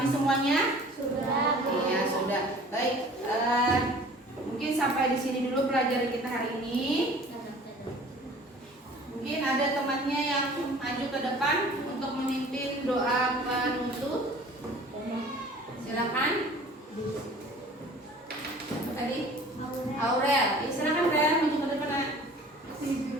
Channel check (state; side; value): normal; both; correlation 0.47